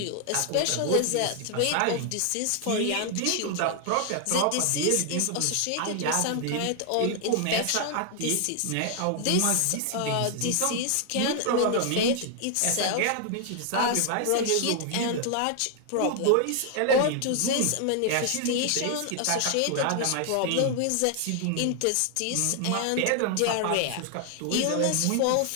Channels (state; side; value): different; both; correlation 0.00